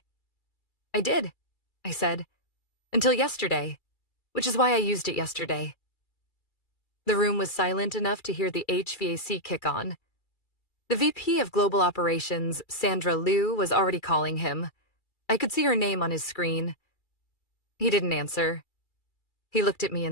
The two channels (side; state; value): right; late; 2.3 ms